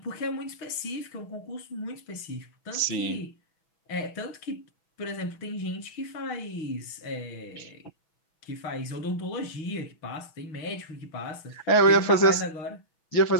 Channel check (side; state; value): right; late; 6.1 ms